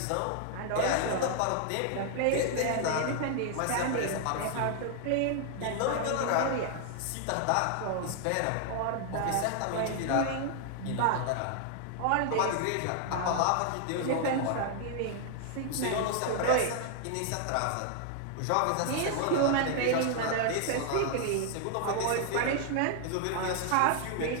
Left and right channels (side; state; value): both; different; correlation 0.00